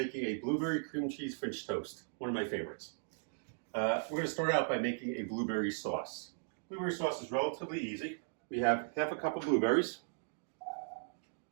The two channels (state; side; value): silent; left; digital silence